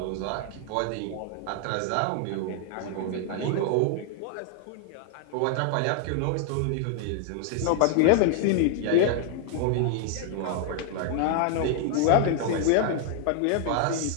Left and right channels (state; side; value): different; both; correlation 0.00